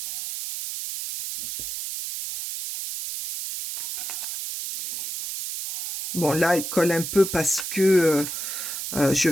Bon, là, elle colle un peu parce que je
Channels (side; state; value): right; noise; hiss, 6 dB below the sound